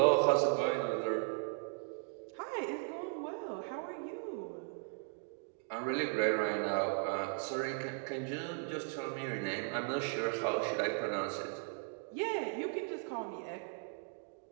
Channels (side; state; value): left; silent; 53 dB below the other